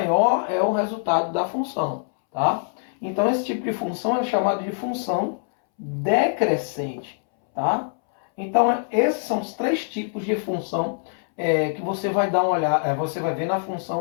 é o resultado da função, tá? Então esse tipo de função é chamado de função decrescente, tá? Então esses são os três tipos de função que você vai dar uma olhada, você vai ver na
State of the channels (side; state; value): right; silent; 63 dB below the other